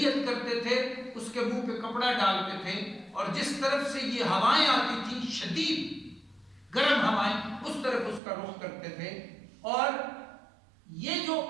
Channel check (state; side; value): drops out; left; at 8.2 s